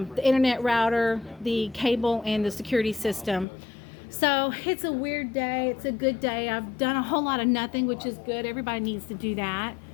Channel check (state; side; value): drops out; right; at 3.5 s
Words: internet router, the cable, and the security system. So it's a weird day. It's a good day. I've done a whole lot of nothing, which is good. Everybody needs to do that.